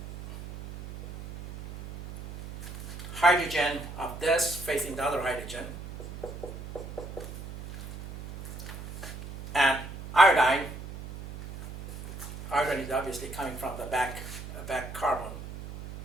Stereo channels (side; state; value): right; noise; hum, 11 dB below the sound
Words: hydrogen of this facing the other hydrogen, and iodine. Iodine is obviously coming from the back carbon,